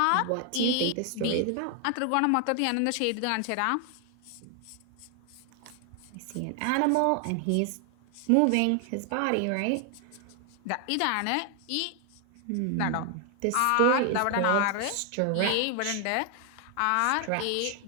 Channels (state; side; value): different; both; correlation 0.00